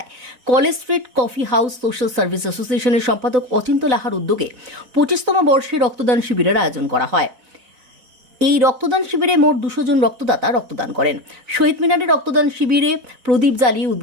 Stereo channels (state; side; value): late; left; 4.0 ms